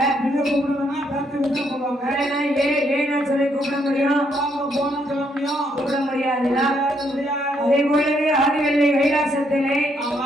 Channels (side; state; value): both; normal; correlation 0.73